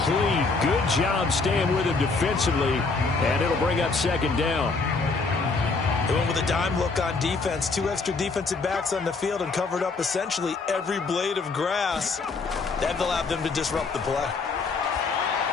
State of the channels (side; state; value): right; quieter; 4.1 dB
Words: Good job staying with him defensively. And it'll bring up 2nd down. They went with a dime look on defense. 2 extra defensive backs on the field and covered up essentially every blade of grass. That allowed them to disrupt the play.